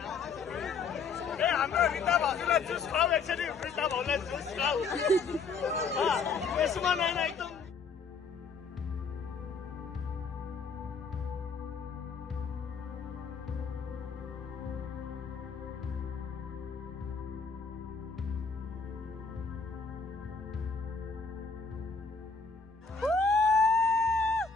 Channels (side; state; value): right; quieter; 4.8 dB